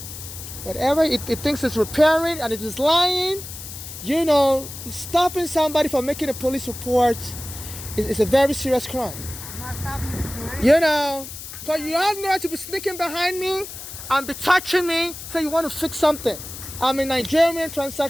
Whatever it thinks it's repairing and it is lying, stopping somebody from making a police report is a very serious crime. I'm not stopping you from doing it. Because you have no right to be sneaking behind me and be touching me, so you want to fix something. I'm a Nigerian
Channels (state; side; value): noise; left; hiss, 11 dB below the sound